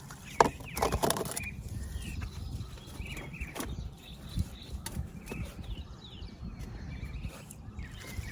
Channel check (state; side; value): identical; both; correlation 1.00